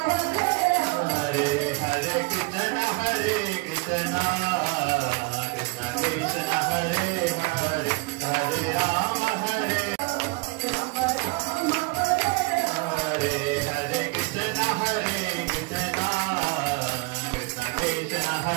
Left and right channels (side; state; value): left; quieter; 28.1 dB